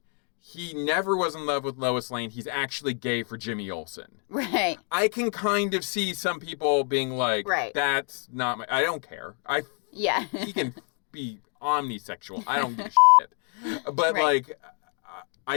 he never was in love with Lois Lane, he's actually gay for Jimmy Olsen. Right. I can kind of see some people being like, that's not I don't care. He can be omnisexual. I don't give a shit. But, like,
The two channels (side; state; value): right; quieter; 36.4 dB